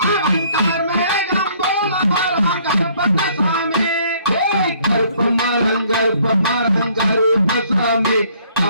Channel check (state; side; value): inverted; both; correlation -0.61